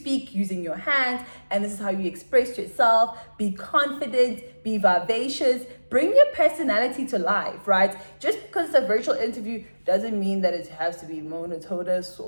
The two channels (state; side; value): inverted; both; correlation -1.00